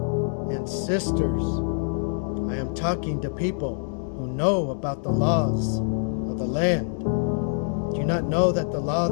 and sisters, I am talking to people who know about the laws of the land. Do you not know that the law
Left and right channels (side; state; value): right; silent; 61 dB below the other